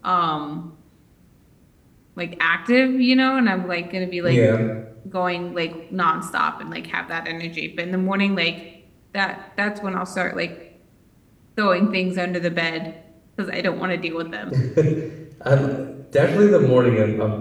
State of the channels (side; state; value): both; identical; correlation 1.00